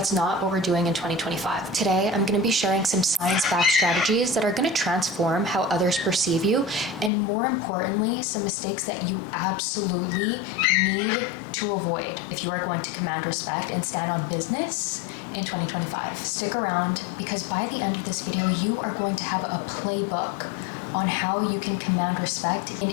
not what we're doing in 2025. Today, I'm going to be sharing some science-backed strategies that are going to transform how others perceive you, and more importantly, some mistakes that you absolutely need to avoid if you are going to command respect and stand on business in 2025. Stick around, because by the end of this video, you are going to have a playbook on how you can command respect in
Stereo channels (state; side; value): drops out; right; at 7.1 s